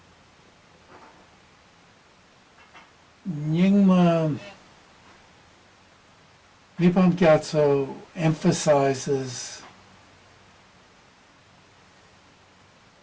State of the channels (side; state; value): both; identical; correlation 1.00